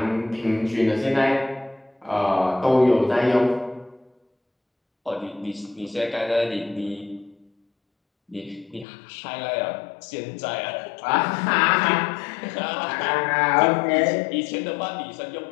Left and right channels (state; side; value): drops out; right; at 8.8 s